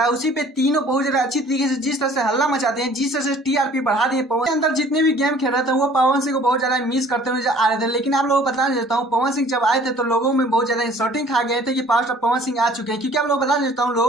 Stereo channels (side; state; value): both; normal; correlation 0.53